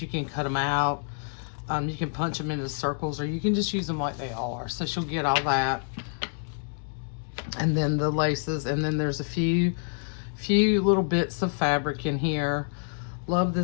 You can cut them out. You can punch them into circles, or you can just use them like they are. So she'll get all that. And then the laces, and then there's a few little bits of fabric in here. Love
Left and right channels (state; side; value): silent; right; digital silence